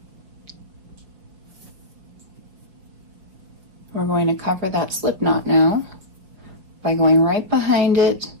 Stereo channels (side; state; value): left; late; 5.2 ms